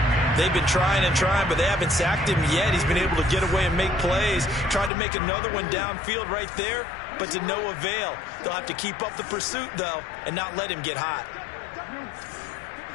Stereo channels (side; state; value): right; drops out; at 4.9 s